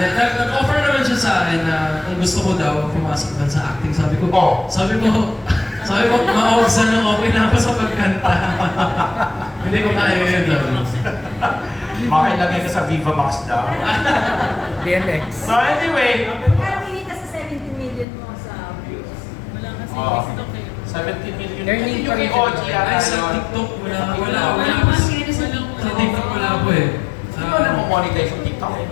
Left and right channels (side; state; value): right; drops out; at 18.1 s